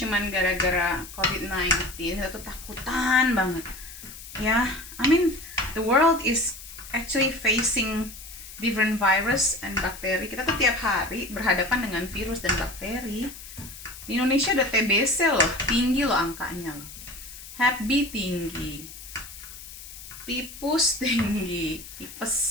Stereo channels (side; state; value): left; noise; hiss, 15 dB below the sound